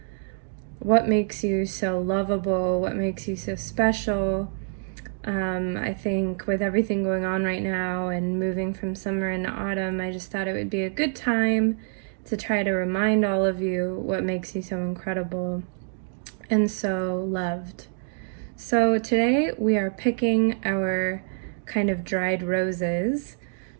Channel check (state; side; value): silent; left; digital silence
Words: what makes you so lovable, what makes you so special. I think with everything going on right now and moving from summer into autumn, I just thought it would be a good time to try to remind all of you what makes you so incredible and so loved. So today we are picking our kind of dried roses.